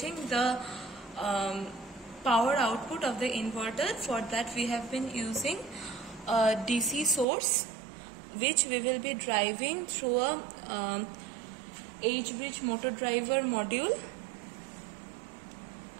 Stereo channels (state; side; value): drops out; left; at 7.2 s